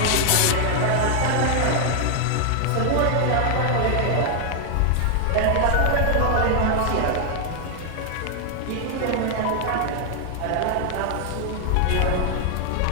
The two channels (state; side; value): different; both; correlation 0.00